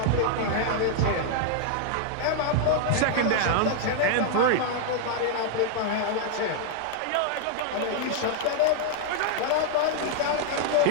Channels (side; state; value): both; different; correlation -0.01